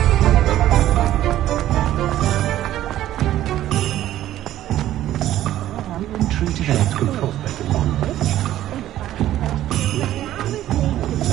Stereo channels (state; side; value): quieter; left; 13.2 dB